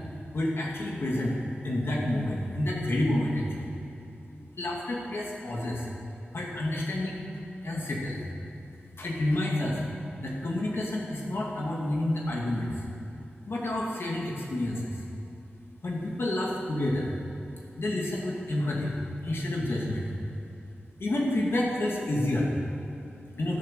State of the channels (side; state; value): both; normal; correlation 0.91